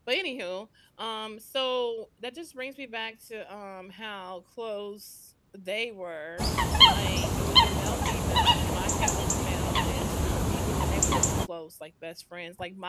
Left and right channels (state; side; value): identical; both; correlation 1.00